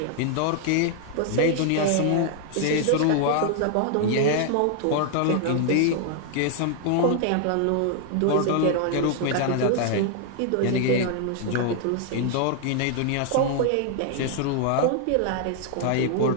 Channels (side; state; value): both; different; correlation 0.00